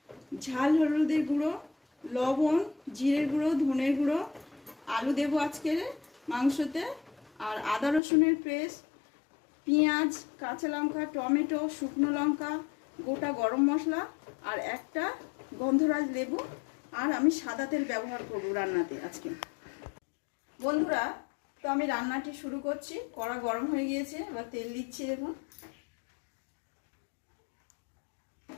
ঝাল হলুদের গুঁড়ো, লবণ, জিরের গুঁড়ো, ধনের গুঁড়ো, আলু দেবো আজকের মাংসতে, আর আদা রসুনের পেস্ট, পেঁয়াজ, কাঁচা লঙ্কা, টমেটো, শুকনো লঙ্কা, গোটা গরম মশলা আর একটা গন্ধরাজ লেবু। আর আমি সাদা তেল ব্যবহার করব রান্নাতে আজকে। বন্ধুরা, তো আমি রান্নাটি শুরু করছি। কড়া গরম হয়ে গিয়েছে, এবার তেল দিচ্ছি। দেখুন,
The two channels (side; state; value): right; drops out; at 8.0 s